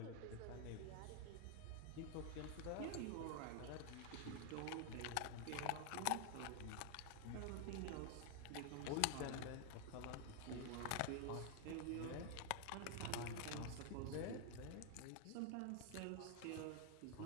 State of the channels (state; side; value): different; both; correlation 0.00